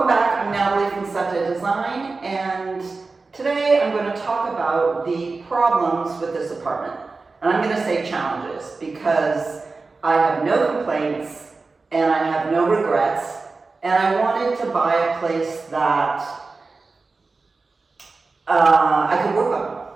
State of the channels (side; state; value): left; quieter; 3.9 dB